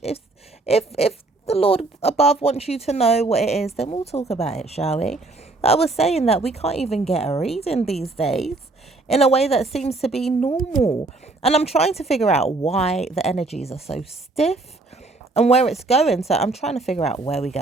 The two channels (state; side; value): quieter; left; 3.3 dB